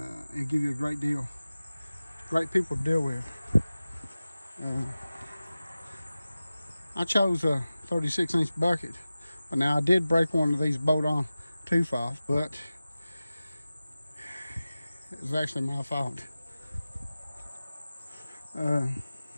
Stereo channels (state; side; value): inverted; both; correlation -0.96